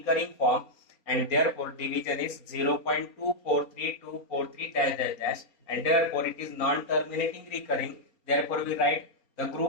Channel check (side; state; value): right; late; 3.9 ms